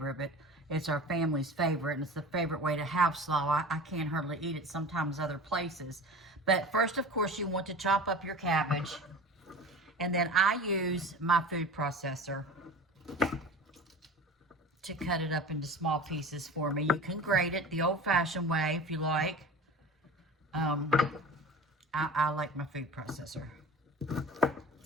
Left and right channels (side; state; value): both; normal; correlation 0.36